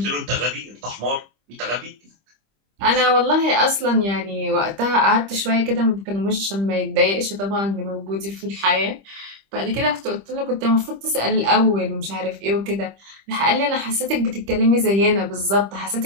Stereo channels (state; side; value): late; left; 25 ms